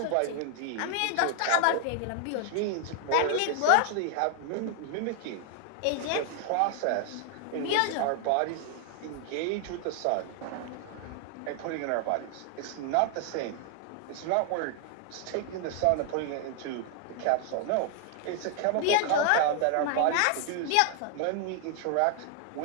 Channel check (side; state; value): both; different; correlation 0.00